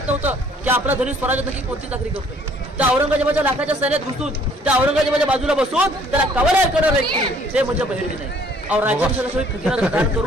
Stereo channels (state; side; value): normal; both; correlation 0.60